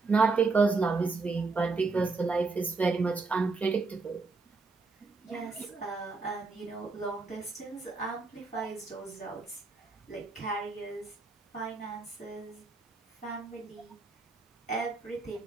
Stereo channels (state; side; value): quieter; left; 4.0 dB